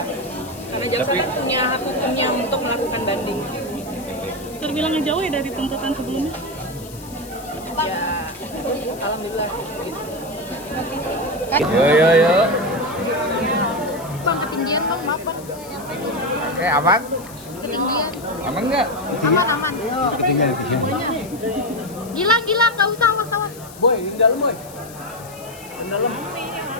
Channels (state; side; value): noise; left; hiss, 18 dB below the sound